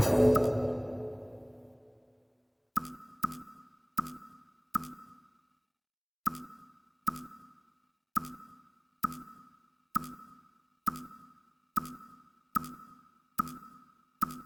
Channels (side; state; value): both; identical; correlation 1.00